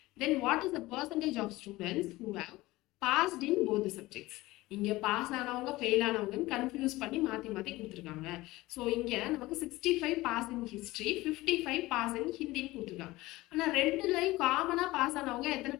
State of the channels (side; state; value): right; quieter; 19.1 dB